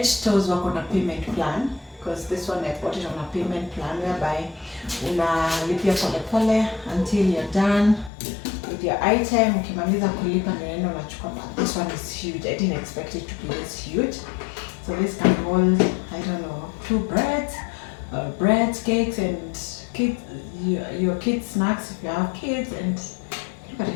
Stores work on a payment plan, because this one I bought it on a payment plan whereby unalipia pole until you're done with your item. Ukimaliza kulipa ndio unachukua. This one is huge. I didn't expect it to be this huge. So this can hold, I don't know, 2 breads, cakes, and your kids' snacks if you have kids. And look at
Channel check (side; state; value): right; drops out; at 8.1 s